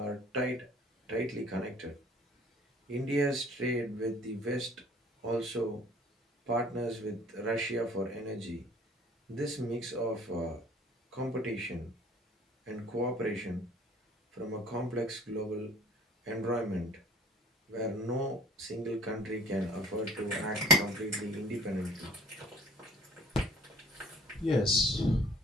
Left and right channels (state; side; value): normal; both; correlation 0.51